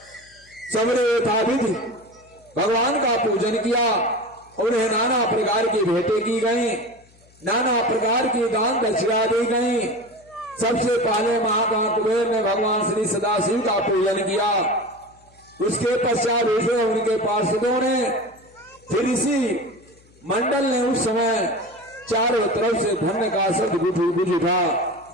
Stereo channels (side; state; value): left; noise; hum, 29 dB below the sound